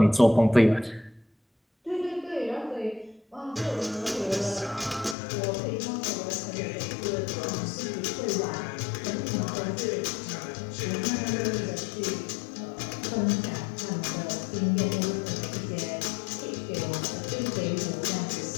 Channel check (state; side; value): drops out; right; at 5.2 s